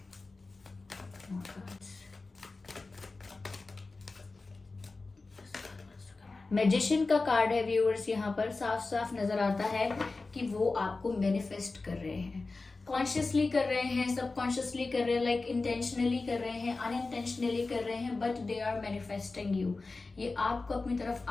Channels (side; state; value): right; quieter; 3.7 dB